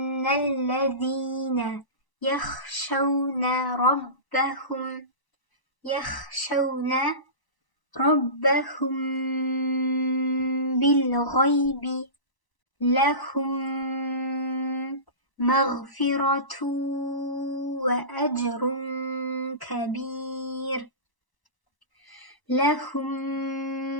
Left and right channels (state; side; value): late; right; 1.0 ms